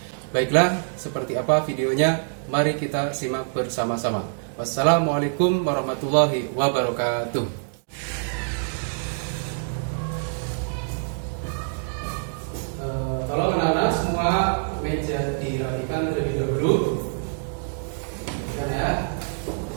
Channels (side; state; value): left; silent; digital silence